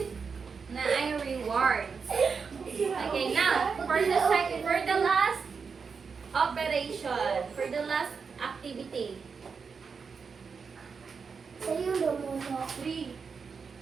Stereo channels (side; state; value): left; quieter; 5.5 dB